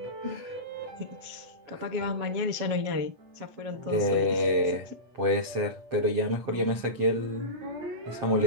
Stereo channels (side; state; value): left; late; 7.6 ms